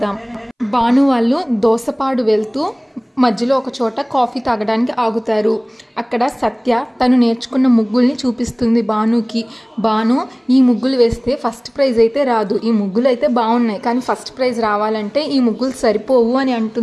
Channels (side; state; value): both; identical; correlation 1.00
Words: భాను వాళ్ళు దోసపాడు వెళ్తూ మధ్యలో ఒక చోట కాఫీ తాగడానికి ఆగుతారు. అక్కడ సత్య తను నేర్చుకున్న ముగ్గుల్ని చూపిస్తుంది భానుకి. భాను ఈ ముగ్గులు వేస్తే ఫస్ట్ ప్రైజ్ అయితే రాదు, ఈ ముగ్గులు అయితే బాగున్నాయి కానీ ఫస్ట్ ప్రైజ్ రావాలంటే ఈ ముగ్గులు సరిపోవు అని